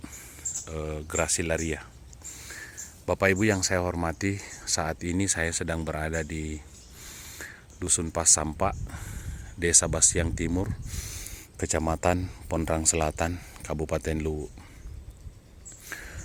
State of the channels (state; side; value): identical; both; correlation 1.00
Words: Gracilaria. Bapak Ibu yang saya hormati, saat ini saya sedang berada di Dusun Pasampa, Desa Bastiang Timur, Kecamatan Pondrang Selatan, Kabupaten Luwu.